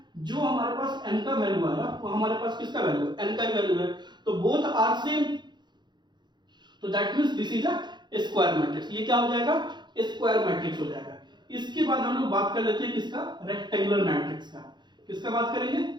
जो हमारे पास n का वैल्यू आया वो हमारे पास किसका वैल्यू है, n का वैल्यू है। तो बोथ आर सेम, तो that means this is a square matrix. ये क्या हो जाएगा, स्क्वायर मैट्रिक्स हो जाएगा। इसके बाद हम लोग बात कर लेते हैं किसका, रेक्टेंगुलर मैट्रिक्स का। किसका बात करेंगे,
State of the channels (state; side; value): late; left; 0.21 ms